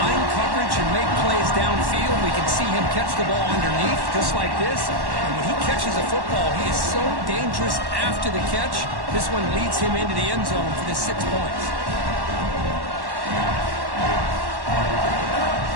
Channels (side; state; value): left; late; 1.1 ms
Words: coverage and make plays downfield. We can see him catch the ball underneath, just like this. And when he catches a football, he is so dangerous after the catch. This one leads him into the end zone for the 6 points.